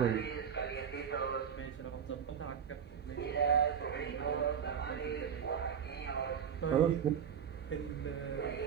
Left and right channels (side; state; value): left; quieter; 7.7 dB